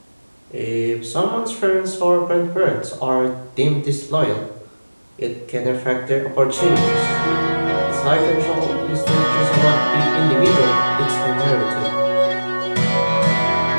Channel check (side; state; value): both; inverted; correlation -1.00